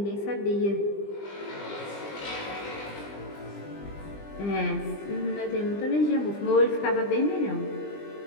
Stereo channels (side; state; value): right; late; 20 ms